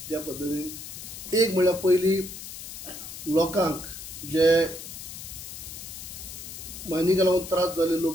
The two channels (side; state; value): left; noise; hiss, 10 dB below the sound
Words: ज्या पद्धतीन एक म्हळ्यार पयलीं लोकांक जे मायनिंगा लागून त्रास जाल्ले